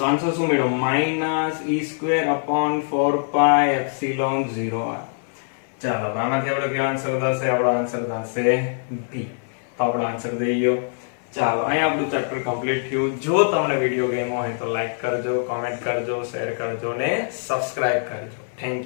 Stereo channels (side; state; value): right; silent; 59 dB below the other